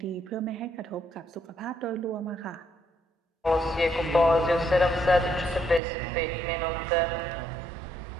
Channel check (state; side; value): drops out; left; at 5.8 s